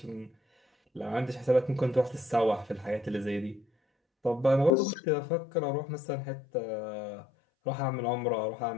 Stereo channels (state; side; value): drops out; right; at 4.8 s